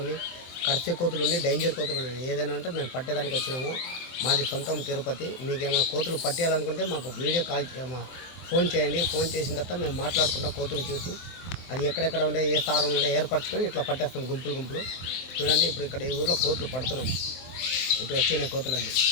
ఉన్నాయి, కర్సే కోతులు ఉన్నాయి, డేంజర్ కోతులు ఉన్నాయి. ఏదైనా ఉంటే మేము పట్టేదానికి వచ్చినాము. మాది సొంతం తిరుపతి. మీకు ఏమైనా కోతులు పట్టేయాలనుకుంటే మాకు వీడియో కాల్ ఫోన్ చేయండి. ఫోన్ చేసిన తర్వాత మేము మాట్లాడుకుంటాం. కోతులు చూసి అది ఎక్కడెక్కడ ఉండే ఏ స్థానంలో ఉండే ఏర్పరచుకొని ఇట్లా పట్టేస్తాం గుంపులు. చూడండి ఇప్పుడు ఇక్కడ ఈ ఊర్లో కోతులు పడుతున్నాం. ఇటు వచ్చినాయి కోతులన్నీ.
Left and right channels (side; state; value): right; late; 24 ms